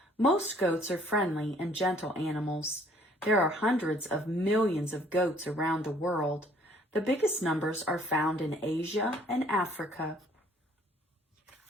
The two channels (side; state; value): both; normal; correlation 0.59